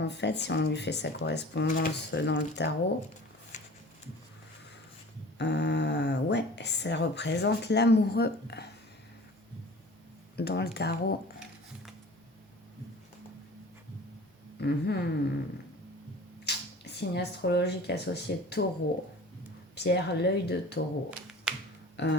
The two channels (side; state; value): both; normal; correlation 0.42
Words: fait, si on lui fait sa correspondance dans le tarot. Ouais, ça représente l'amoureux dans le tarot. Signe astrologique associé taureau. Pierre, l'œil de taureau.